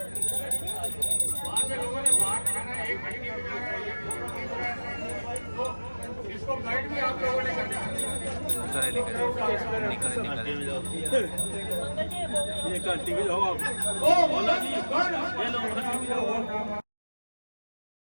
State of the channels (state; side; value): inverted; both; correlation -1.00